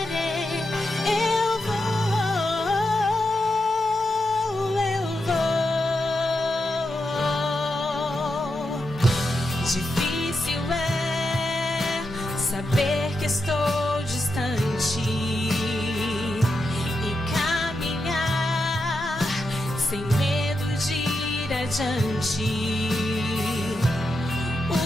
Saber que estou distante e caminhar sem medo de ir adiante.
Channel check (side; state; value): both; normal; correlation 0.86